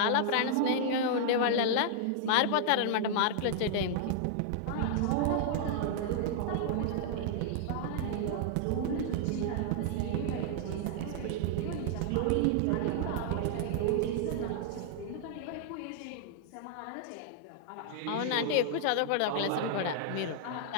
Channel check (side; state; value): both; different; correlation -0.01